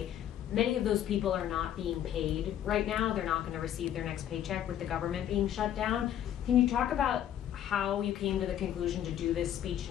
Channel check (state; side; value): quieter; right; 10.8 dB